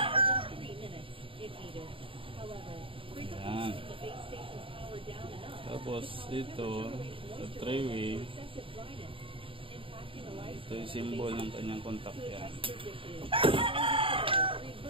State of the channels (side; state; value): left; late; 0.26 ms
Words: within 3 minutes if needed. However, frequently the base station's power down enough. Tapos ito, sa 3-way, ito yung symbol ng kanyang contact. Yan.